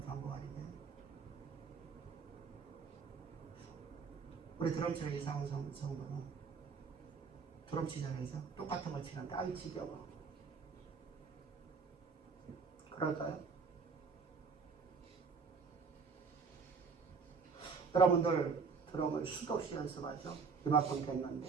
방법 아니에요. 우리 드럼 치는 이상훈 성도는 드럼 치잖아요. 똑같은 거 치는데 아이 지겨워. 그럴까요? 여러분들 드럼을 수도 없이 연습하죠. 이만큼 됐는데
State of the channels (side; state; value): left; quieter; 5.2 dB